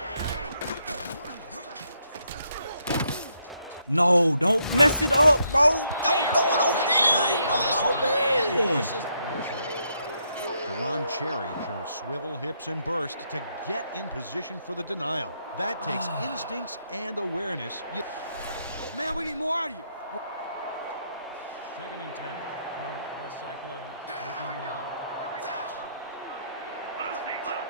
No, don't mess it up, bro. Don't throw it over there, bro. Deron Cherry shows swivel hips and burst to get in position for the denial. That takes instincts and awareness. Man, we need more out of you. Second and 10 from the Cyclones. 13-yard line.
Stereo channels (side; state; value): both; inverted; correlation -0.76